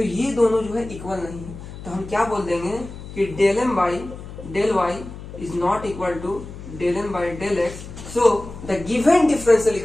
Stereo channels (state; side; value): noise; left; hum, 13 dB below the sound